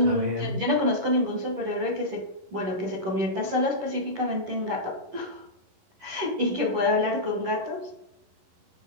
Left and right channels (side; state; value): left; late; 11 ms